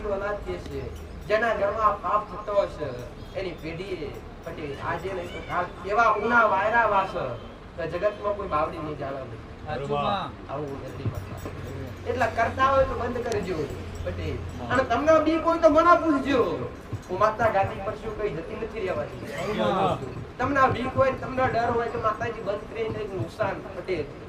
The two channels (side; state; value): both; identical; correlation 1.00